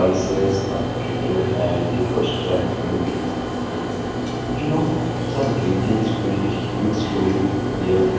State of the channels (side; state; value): both; identical; correlation 1.00